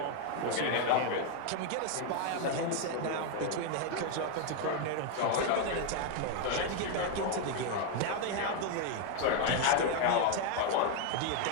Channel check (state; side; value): different; both; correlation 0.01